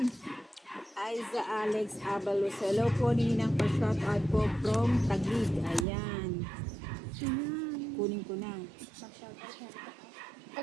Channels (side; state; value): left; drops out; at 5.9 s